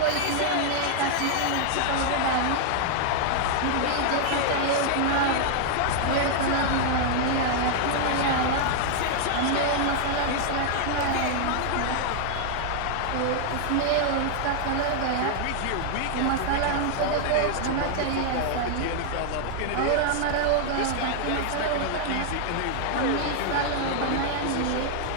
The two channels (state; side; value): different; both; correlation -0.01